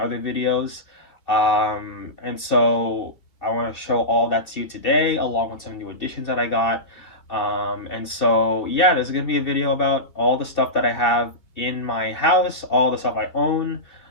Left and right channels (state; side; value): late; right; 2.9 ms